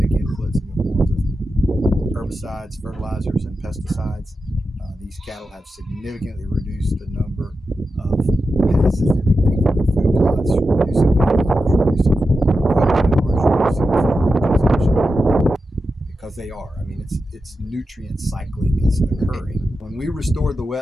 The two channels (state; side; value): normal; both; correlation 0.90